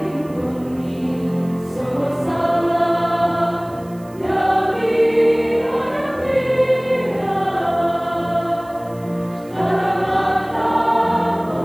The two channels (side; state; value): right; noise; hiss, 27 dB below the sound